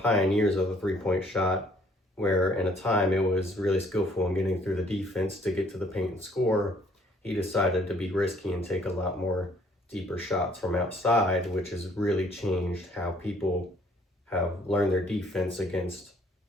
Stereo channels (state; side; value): normal; both; correlation 0.61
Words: of the three-point shot, where in a time it was really skillful in getting through the defense to get to the paint and score. He decided to be risky and take a lot more deeper shots from outside, which has really changed how people have learned their defense against